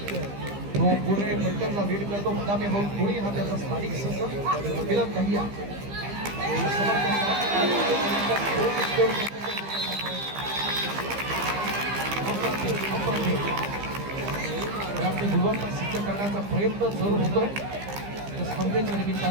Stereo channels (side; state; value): left; late; 15 ms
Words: तो पुणे फलटणला लीड करतो. मुद्दामी होऊन पुणे हा त्याचा स्थानिक संघ. मिलन दहिया गुणवत्ता सिद्ध करण्याचा प्रयत्न जरूर होतोय या स्पर्धेच्या